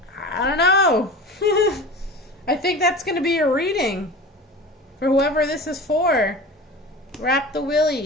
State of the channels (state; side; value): normal; both; correlation 0.34